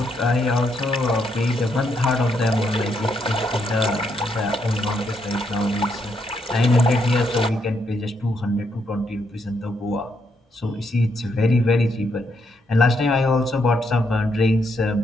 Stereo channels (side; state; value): both; normal; correlation 0.77